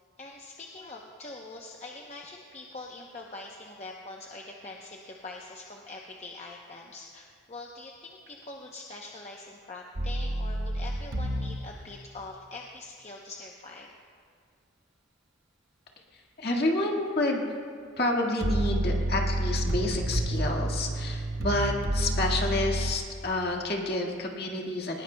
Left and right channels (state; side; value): normal; both; correlation 0.56